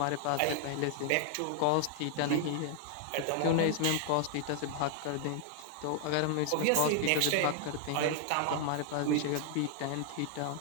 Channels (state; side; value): different; both; correlation 0.00